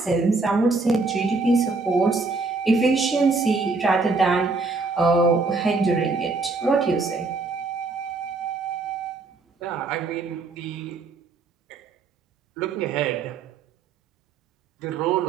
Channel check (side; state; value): left; quieter; 3.9 dB